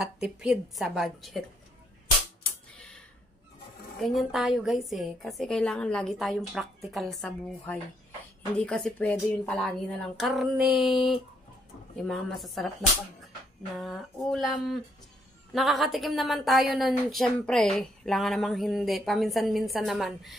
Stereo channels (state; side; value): normal; both; correlation 0.72